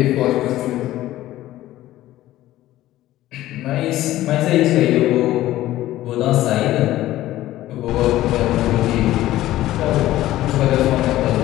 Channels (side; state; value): right; quieter; 15.0 dB